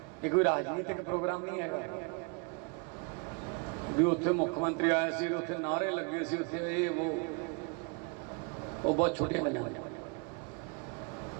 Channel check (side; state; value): left; quieter; 33.7 dB